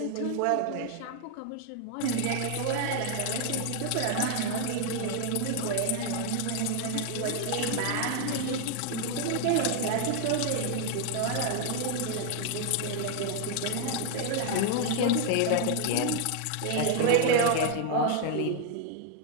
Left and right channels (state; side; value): different; both; correlation 0.00